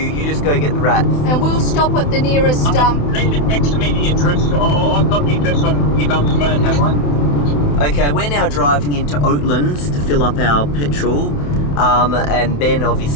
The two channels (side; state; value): right; late; 28 ms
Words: You just go get the rats. And we'll stop at the nearest Leave it next to me, the address. I've got the address on your mum's phone, have I? Okay, we're now driving into Oatlands to fill up our petrol. And Ben,